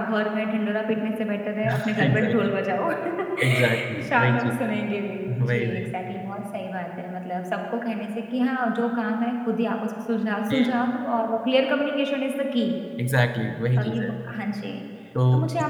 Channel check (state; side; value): identical; both; correlation 1.00